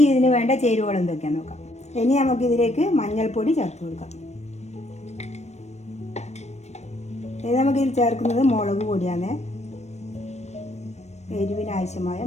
ഇതിന് വേണ്ട ചേരുവകൾ എന്തൊക്കെയാണെന്ന് നോക്കാം. ഇനി നമുക്ക് ഇതിലേക്ക് മഞ്ഞൾപ്പൊടി ചേർത്ത് കൊടുക്കാം. ഇനി നമുക്കിതിൽ ചേർക്കുന്നത് മുളക് പൊടിയാണ്. എരിവിന് ആവശ്യമായ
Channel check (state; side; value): late; right; 0.32 ms